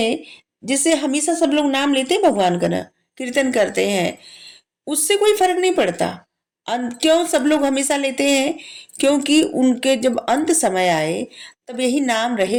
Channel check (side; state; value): both; identical; correlation 1.00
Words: जैसे हमेशा सब लोग नाम लेते हैं भगवान का ना, कीर्तन करते हैं, उससे कोई फर्क नहीं पड़ता। क्यों सब लोग हमेशा लेते हैं? क्योंकि उनके जब अंत समय आए तब यही नाम रहे